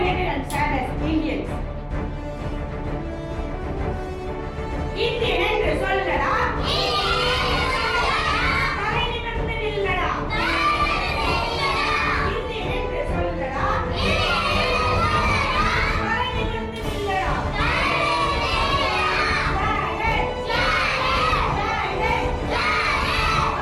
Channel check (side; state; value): both; identical; correlation 1.00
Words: united and stand as Indians. Indian என்று சொல்லடா. தலை நிமிர்ந்து நில்லடா. இந்தியன் என்று சொல்லடா. தலை நிமிர்ந்து நில்லடா.